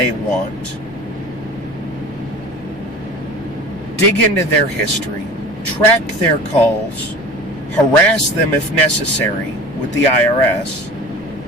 want, dig into their history, track their calls, harass them if necessary with the IRS,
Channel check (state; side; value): noise; left; rumble, 21 dB below the sound